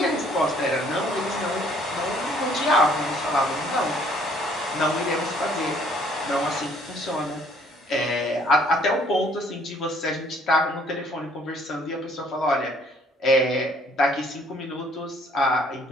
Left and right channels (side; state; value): both; normal; correlation 0.61